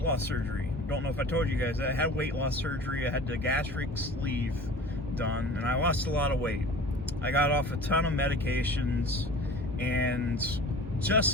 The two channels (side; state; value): both; normal; correlation 0.42